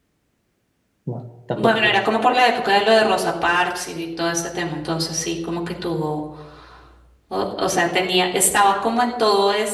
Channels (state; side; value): identical; both; correlation 1.00